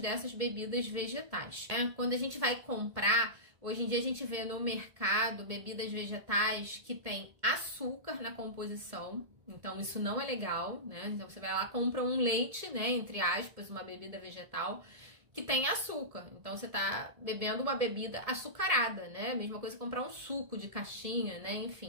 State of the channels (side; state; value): left; late; 1.7 ms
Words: bebidas vegetais, né? Quando a gente vai comprar, hoje em dia a gente vê no mercado bebidas vegetais que tem açúcar na composição, então isso não é legal, né? Então você vai lá, compra um leite, né, entre aspas, uma bebida vegetal, que tem açúcar. Então você tá bebendo uma bebida açucarada, né? Mesma coisa que comprar um suco de caixinha, né?